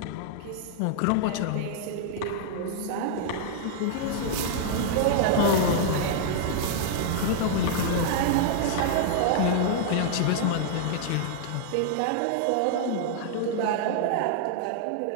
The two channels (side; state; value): both; different; correlation -0.01